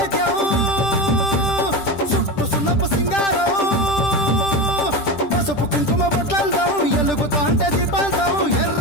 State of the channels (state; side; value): late; right; 10 ms